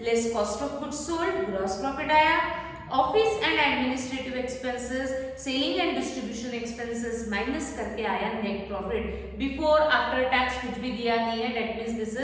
less cost of goods sold, gross profit आया। Office and administrative expenses, selling and distribution expenses minus करके आया net profit. Before after tax कुछ भी दिया नहीं है, that means this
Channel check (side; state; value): both; identical; correlation 1.00